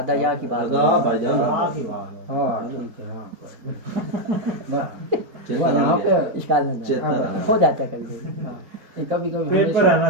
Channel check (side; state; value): left; late; 4.6 ms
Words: یا کی بات بھائی جان ہاں ٹھیک ہے ہاں وہاں پہ اشکال نہیں ہو جاتا ہے کبھی کبھی کبھی